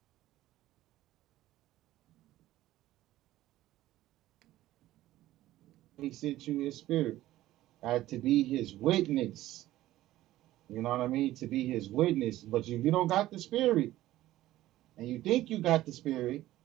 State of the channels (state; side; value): quieter; left; 15.3 dB